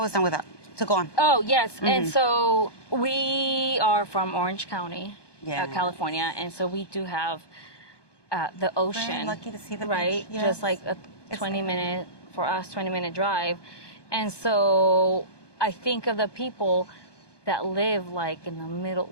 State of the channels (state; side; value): late; right; 1.2 ms